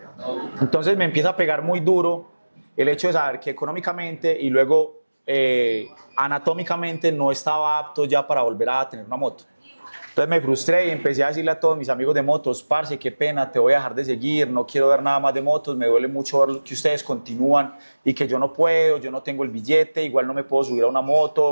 Entonces me empieza a pegar muy duro el hecho de saber que económicamente y luego anatómicamente no estaba apto ya para volver a tener una moto. Entonces me frustré y empecé a decirle a todos mis amigos de motos, parce, qué pena, te voy a dejar de seguir, no quiero ver nada más de motos, me duele mucho ver que ustedes continúan y que yo no puedo, yo no tengo el billete, igual no me puedo subir a una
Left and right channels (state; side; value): inverted; both; correlation -1.00